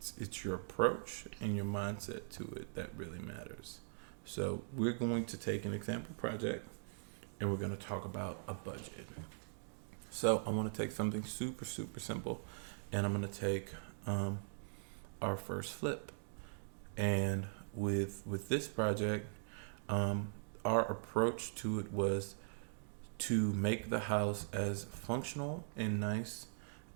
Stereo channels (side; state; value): left; silent; digital silence